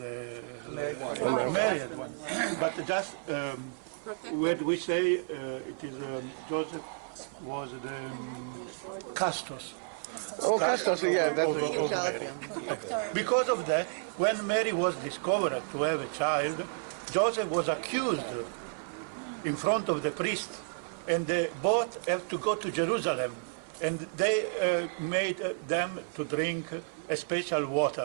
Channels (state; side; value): silent; left; 57 dB below the other